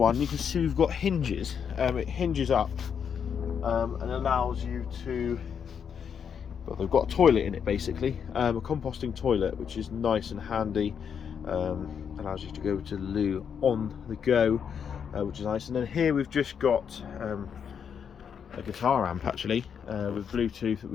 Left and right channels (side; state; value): right; quieter; 7.4 dB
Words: you can see we've got hinges. It hinges up and allows you to, well, they've got a toilet in it basically, a composting toilet, which is nice and handy. Allows you to go to the loo on the go, which is nice. And then here we've just got a guitar amp actually, with Bluetooth, that